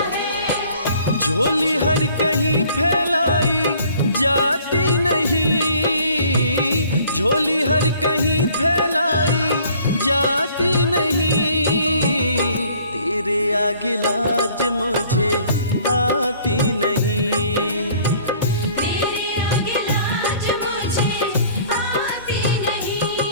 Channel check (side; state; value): both; inverted; correlation -0.55